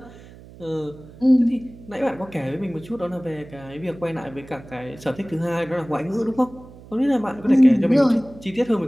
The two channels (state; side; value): noise; right; hum, 20 dB below the sound